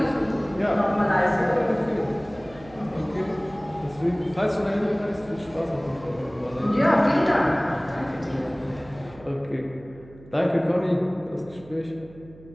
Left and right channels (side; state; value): right; noise; hum, 21 dB below the sound